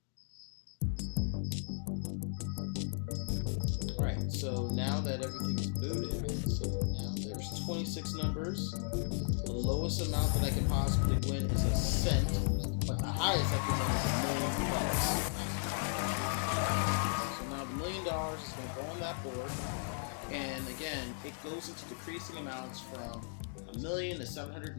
Alright, so So now that everything is booted, there's 26 numbers. The lowest amount that I can possibly win is a cent, but the highest I can win is $1 million. So now the $1 million is going to go on that board. And again, it goes into decreasing amounts from $1 million to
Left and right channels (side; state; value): right; silent; digital silence